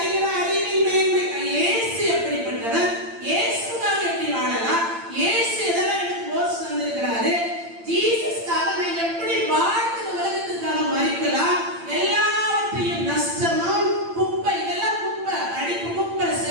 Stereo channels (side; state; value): left; late; 8.8 ms